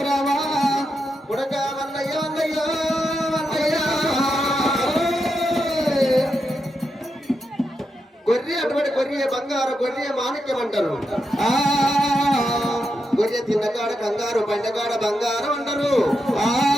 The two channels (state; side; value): normal; both; correlation 0.85